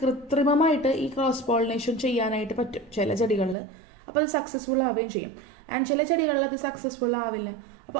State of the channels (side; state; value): left; drops out; at 3.6 s